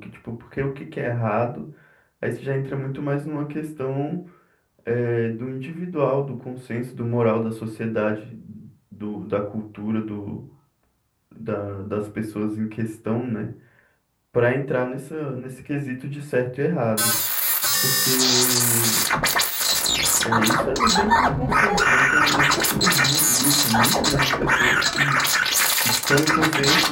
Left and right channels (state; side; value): identical; both; correlation 1.00